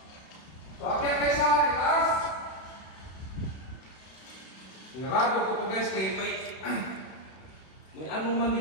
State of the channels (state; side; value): late; right; 31 ms